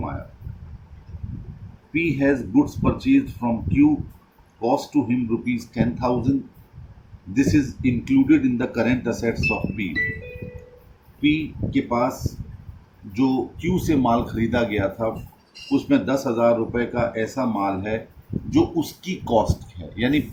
P has goods purchased from Q, cost to him rupees 10,000. This is included in the current assets of P. P के पास जो Q से माल खरीदा गया था उसमें 10,000 रुपये का ऐसा माल है जो उसकी कॉस्ट है, यानी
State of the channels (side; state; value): both; identical; correlation 1.00